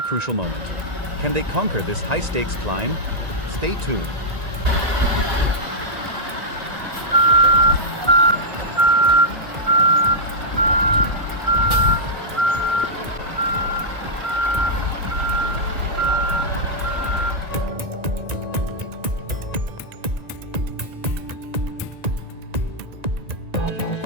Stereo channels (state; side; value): late; left; 1.9 ms